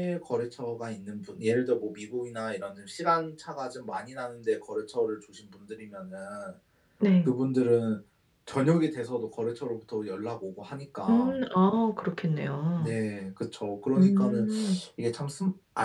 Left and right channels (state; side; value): identical; both; correlation 1.00